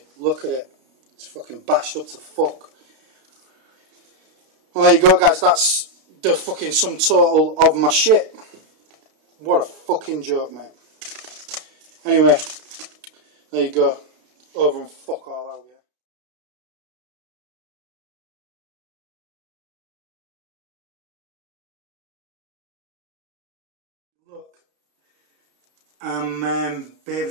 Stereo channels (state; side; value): late; left; 32 ms